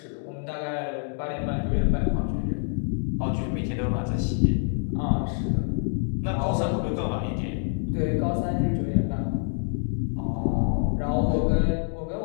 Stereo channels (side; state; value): right; silent; 61 dB below the other